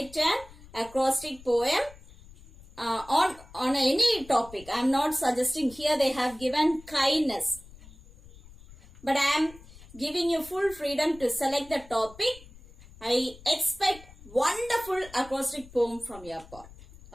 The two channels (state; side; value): noise; left; rumble, 21 dB below the sound